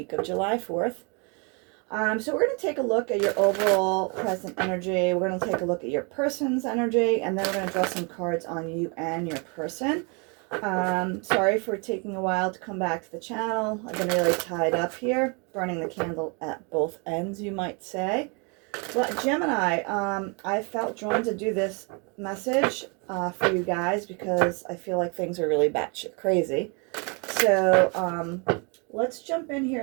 of July 4th. So we're going to take a look at your overall present energy. We're going to take a look at your person's energy, and then we're going to draw some cards on you and your person. Sorry for taking a while to come back to the channel. I've been really tied up here, burning the candle at both ends, you might say. But Gemini, I felt drawn to do this message for you guys because I feel like things are really batshit crazy. So let's jump in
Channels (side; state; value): left; quieter; 33.1 dB